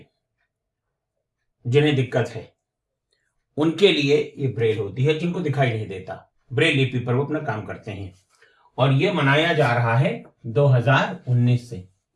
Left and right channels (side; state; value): both; identical; correlation 1.00